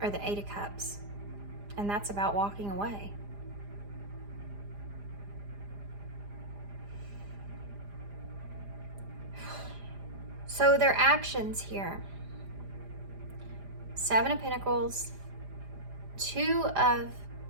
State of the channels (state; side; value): late; left; 4.9 ms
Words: are the 8 of Cups. And that's about walking away. So their actions here. 7 of Pentacles, 2 of